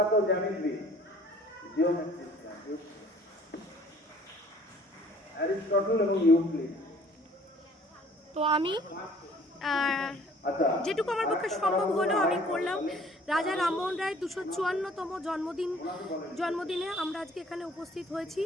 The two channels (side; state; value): both; normal; correlation 0.55